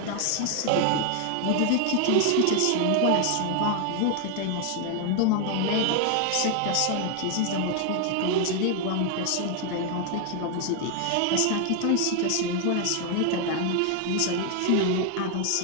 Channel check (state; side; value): different; both; correlation 0.00